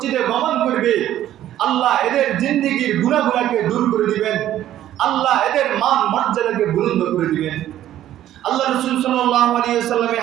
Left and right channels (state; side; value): quieter; left; 12.5 dB